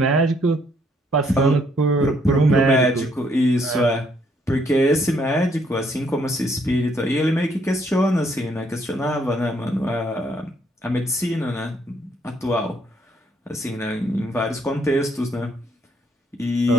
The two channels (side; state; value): both; normal; correlation 0.69